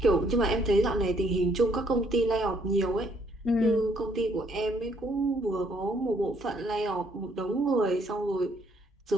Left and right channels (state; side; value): normal; both; correlation 0.67